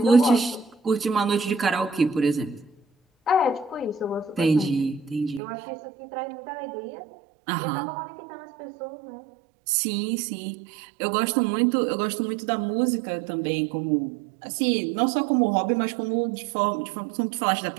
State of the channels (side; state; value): left; drops out; at 5.4 s